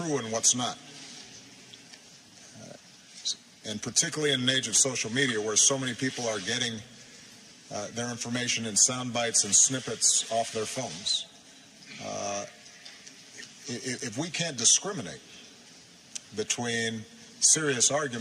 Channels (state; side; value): identical; both; correlation 1.00